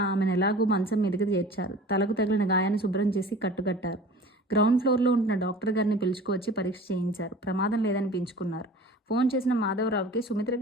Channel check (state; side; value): normal; both; correlation 0.42